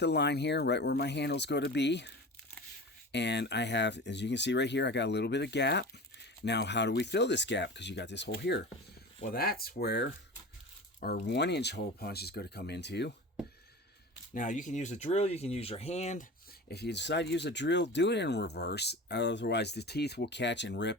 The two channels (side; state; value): both; normal; correlation 0.33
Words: line here, right where my handle's going to be. And I have, as you can see right here, I got a little bit of gap. Now, how do we fill this gap? Because you got this hole here. Well, that's where our 1 inch hole punch is going to come into. Now, you can use a drill, you can use your hand. If you decide to use a drill, do it in reverse. Otherwise, the teeth will catch and